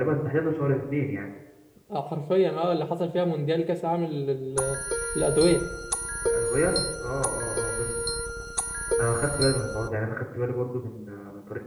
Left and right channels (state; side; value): identical; both; correlation 1.00